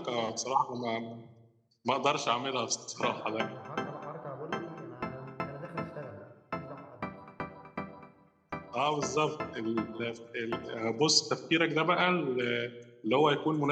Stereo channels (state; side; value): identical; both; correlation 1.00